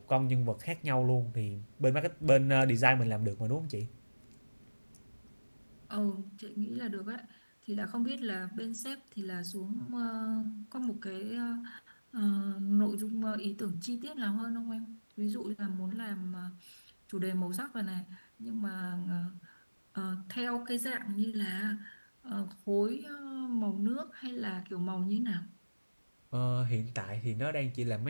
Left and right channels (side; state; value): both; inverted; correlation -1.00